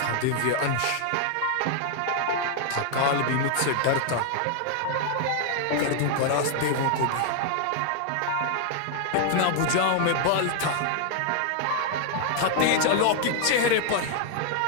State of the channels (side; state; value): both; different; correlation 0.00